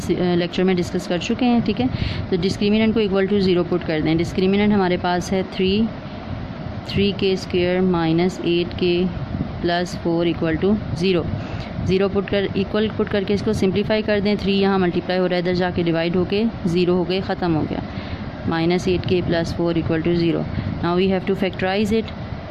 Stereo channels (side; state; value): both; identical; correlation 1.00